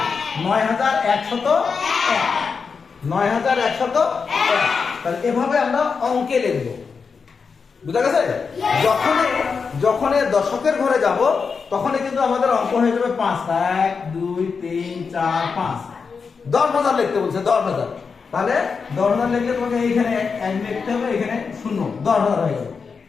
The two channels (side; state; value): right; quieter; 5.4 dB